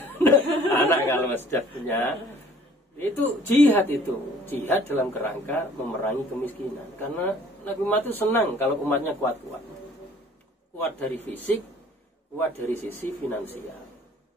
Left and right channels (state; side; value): normal; both; correlation 0.54